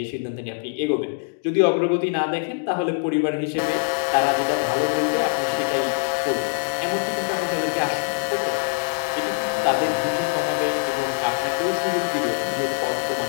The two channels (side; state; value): right; silent; digital silence